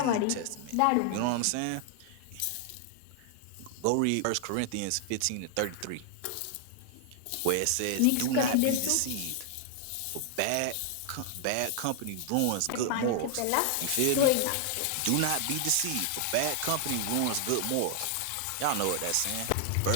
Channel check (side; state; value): both; different; correlation 0.00